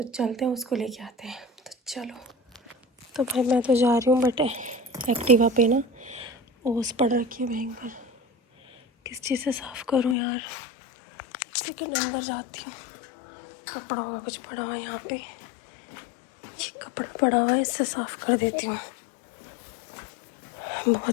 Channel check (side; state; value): right; drops out; at 10.2 s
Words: चलते हैं, उसको लेके आते हैं। तो चलो। तो भाई मैं तो जा रही हूँ, बट एक्टिवा पे ना ओस पड़ रखी है भयंकर। किस चीज़ से साफ़ करूँ यार। सेकंड अंदर जाती हूँ। कपड़ा होगा कुछ पड़ा हुआ है यहाँ पे, ये कपड़ा पड़ा हुआ है, इससे साफ़ कर देती हूँ।